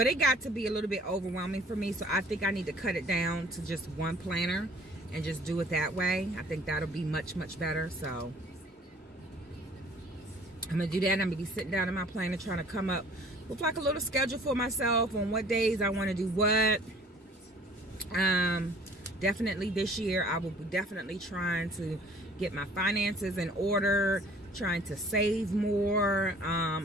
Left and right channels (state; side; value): normal; both; correlation 0.53